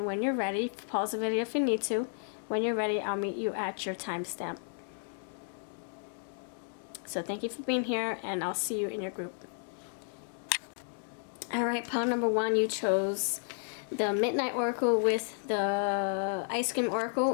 when you're ready, pause the video if you need to. When you're ready, I'll meet you at your timestamp. So thank you for being here, and I'll see you in your group. Alright, pile number 1, you chose the Midnight Oracle with the Ice Cream Oracle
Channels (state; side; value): silent; right; digital silence